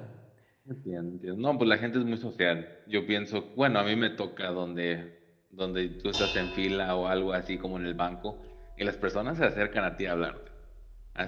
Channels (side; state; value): both; identical; correlation 1.00